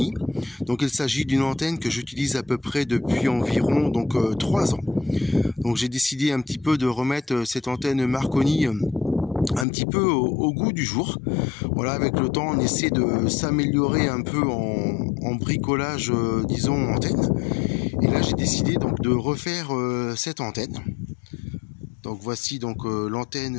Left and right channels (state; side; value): drops out; right; at 9.7 s